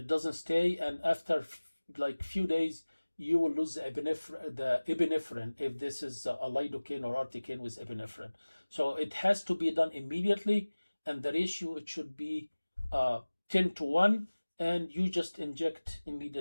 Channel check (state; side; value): inverted; both; correlation -1.00